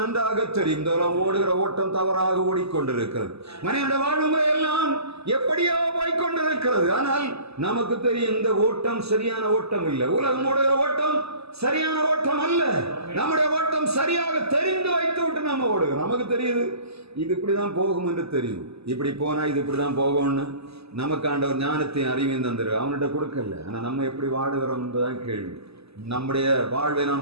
தெரியும் ஓடுகிற ஓட்டம் தவறாக ஓடிக்கொண்டிருக்கிறது. மனிதனுடைய வாழ்முறை எல்லாம் எப்படியோ போய்கொண்டிருக்கிறது. ஆனால் நமக்கு தெரியும் இந்த ஓட்டம் சரியான ஓட்டம் இல்லை. உலகம் ஓடுகிற ஓட்டம் சரியான ஓட்டம் அல்ல. நம்முடைய ஓட்டம் சரியாக தெரிந்து வைத்து விட்டு நம்ம ஓடுகிறோம். நமக்கு தெரியுது இது இப்படிதான் போகும் என்று தெரியும். இப்படி போனா இது இப்படிதான் போகும்னு நமக்கு ஆண்டவர் ஞானத்தையும் அறிவையும் தந்துரு. அவன்கிட்ட கொடுக்கல. ஆனா நம்ம எப்படி வாடுகிறோம் என்பதுதான் கேள்வி. நம்முடைய வாழ்வை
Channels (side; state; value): left; late; 0.79 ms